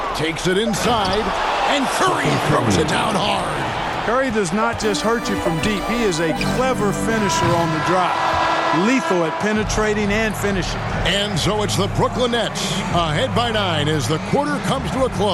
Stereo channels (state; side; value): identical; both; correlation 1.00